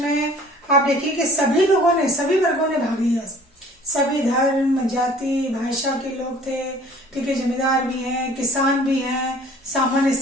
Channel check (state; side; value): normal; both; correlation 0.51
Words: आप देखिए कि सभी लोगों ने, सभी वर्गों ने भाग लिया, सभी धर्म जाति भाषा के लोग थे, ठीक है, जमींदार भी हैं, किसान भी हैं, सामान्य